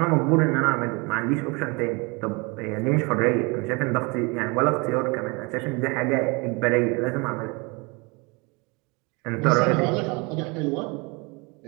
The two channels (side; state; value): left; quieter; 28.2 dB